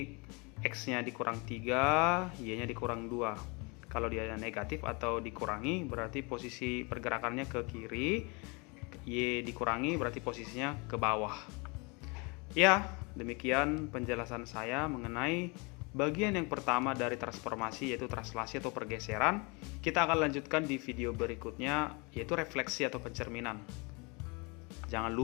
X-nya dikurang 3, Y-nya dikurang 2. Kalau dia negatif atau dikurangi, berarti posisi pergerakannya ke kiri. Y dikurangi berarti posisinya ke bawah. Ya, demikian penjelasan saya mengenai bagian yang pertama dari transformasi, yaitu translasi atau pergeseran. Kita akan lanjutkan di video berikutnya, yaitu refleksi atau pencerminan. Jangan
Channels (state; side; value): quieter; right; 29.7 dB